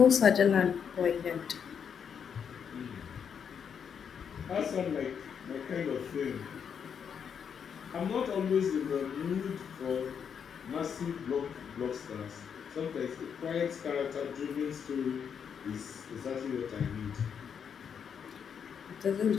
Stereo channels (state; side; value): quieter; right; 7.3 dB